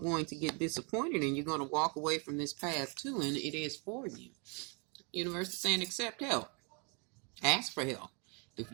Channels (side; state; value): left; quieter; 34.5 dB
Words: going to get disappointed, and you're going to walk away from this path too, and it is for you. Universe is saying accept help. Ask for help. If